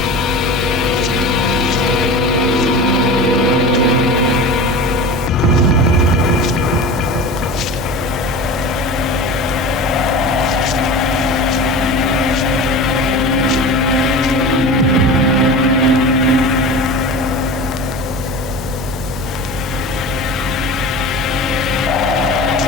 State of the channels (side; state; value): both; normal; correlation 0.32